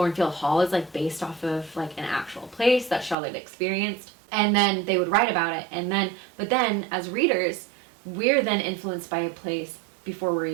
Hall is like based off of like an actual place that Charlotte experienced, and then they would write about it, and then but then as readers, we're then influenced by a place before we're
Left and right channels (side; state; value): left; drops out; at 3.2 s